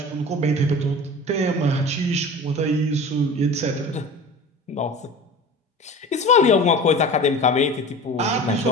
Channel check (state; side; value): normal; both; correlation 0.37